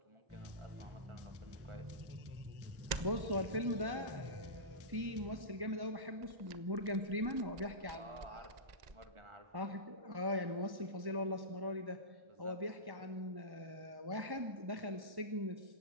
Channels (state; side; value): late; left; 1.1 ms